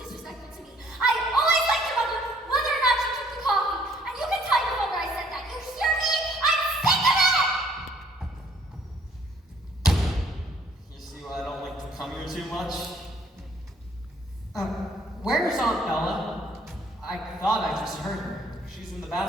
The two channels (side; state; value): both; normal; correlation 0.62